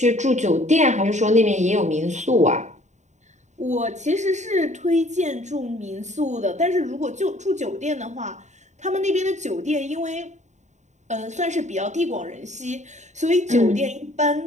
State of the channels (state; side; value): late; left; 0.34 ms